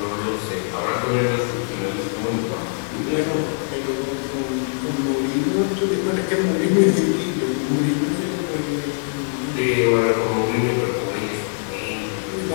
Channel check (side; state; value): right; silent; digital silence